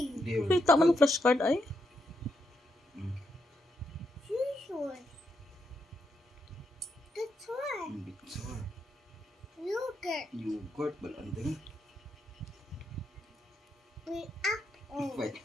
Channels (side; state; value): both; normal; correlation 0.81